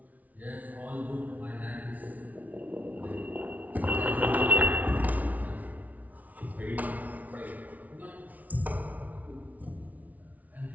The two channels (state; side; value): late; left; 0.073 ms